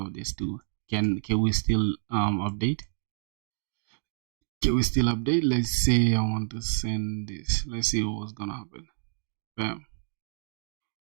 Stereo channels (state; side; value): silent; left; digital silence